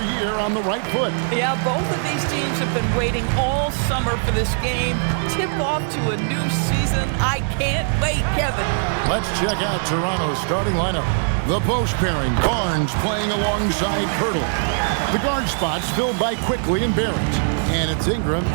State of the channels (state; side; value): silent; left; digital silence